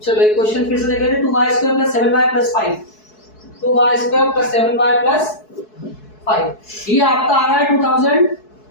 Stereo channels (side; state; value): right; late; 4.7 ms